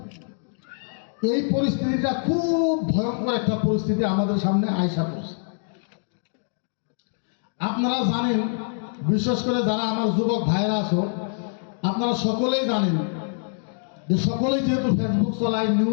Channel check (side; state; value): right; silent; digital silence